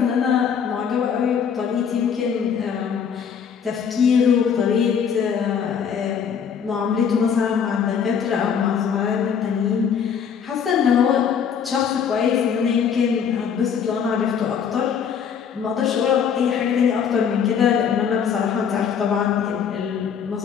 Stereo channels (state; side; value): quieter; right; 7.3 dB